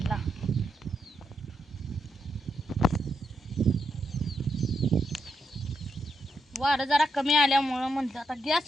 वारं जरा कमी आल्यामुळं म्हणलं आता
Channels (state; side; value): normal; both; correlation 0.82